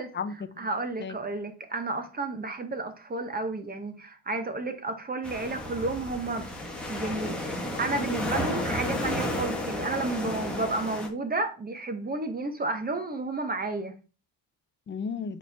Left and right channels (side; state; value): both; normal; correlation 0.18